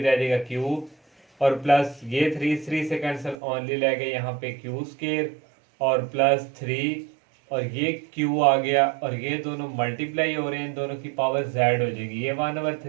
जाएगा q और प्लस ये 3 इस 3 से कैंसिल ओनली रह गया यहाँ पे q² और +3 और ये q आ गया और ये दोनों मल्टीप्लाई हो रहे हैं, इन दोनों की पावर z हो जाएगी, ये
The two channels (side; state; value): left; drops out; at 3.4 s